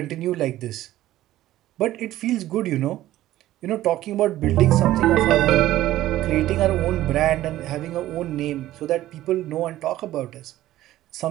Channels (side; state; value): left; quieter; 14.6 dB